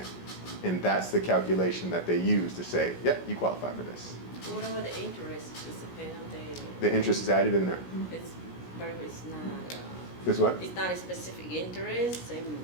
And that's the calculation that they use to say, yep, you qualify for this. What about the interest? Is it paid on The interest is added in there. it's, but it's not, Is what? it's not a specific interest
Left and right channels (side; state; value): right; late; 17 ms